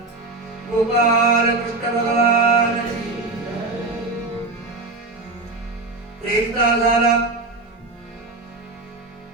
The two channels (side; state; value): left; quieter; 3.3 dB